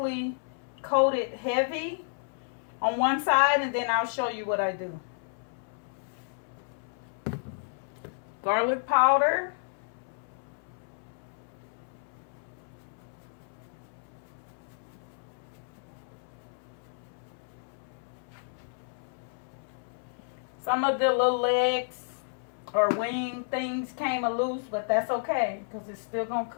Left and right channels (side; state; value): right; silent; 57 dB below the other